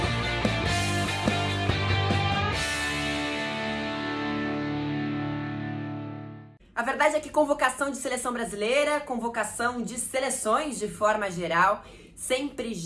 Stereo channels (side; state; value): both; identical; correlation 1.00